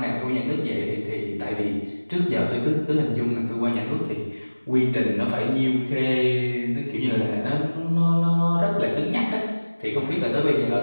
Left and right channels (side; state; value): both; inverted; correlation -1.00